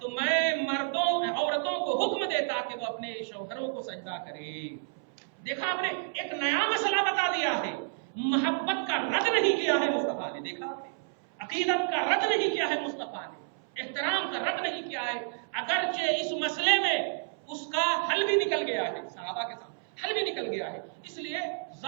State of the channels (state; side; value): silent; left; 58 dB below the other